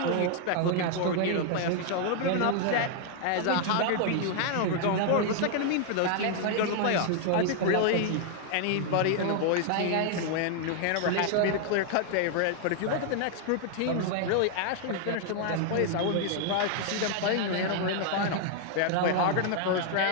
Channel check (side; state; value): both; different; correlation 0.00